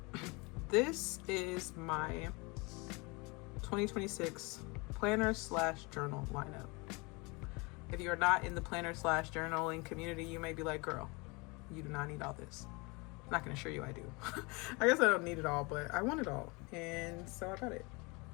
This is my 2026 planner / journal lineup. If you're not in the planner / journaling community, you may be like, girl, you do not need all this. I'm not gonna assure you I do. I guess I don't need it all, but I want it all. And so I got it.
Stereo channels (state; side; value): quieter; right; 27.6 dB